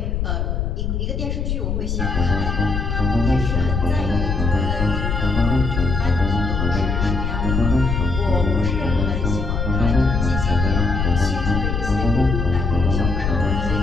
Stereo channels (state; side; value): noise; left; rumble, 1 dB below the sound